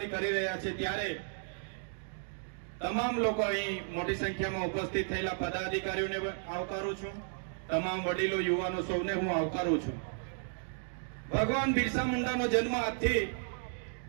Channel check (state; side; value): silent; left; digital silence